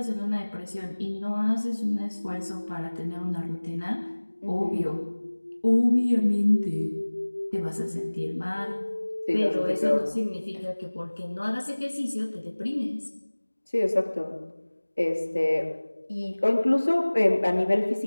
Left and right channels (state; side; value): inverted; both; correlation -1.00